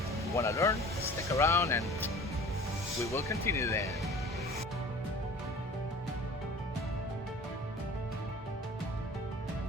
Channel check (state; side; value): normal; both; correlation 0.43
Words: you wanna learn, stick around and we will continue then.